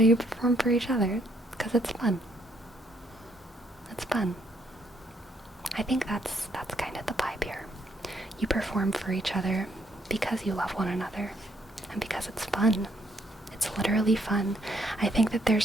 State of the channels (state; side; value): normal; both; correlation 0.70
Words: you perform for each other, because it's fun. It's fun. I think that's kind of the vibe here. You perform for each other because you love one another, and because it's fun. It's literally fun. I think that